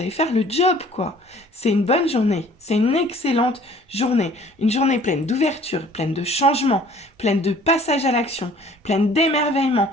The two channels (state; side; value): normal; both; correlation 0.52